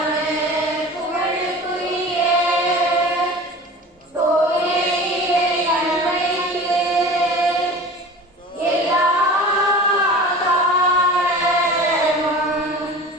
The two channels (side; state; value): both; normal; correlation 0.37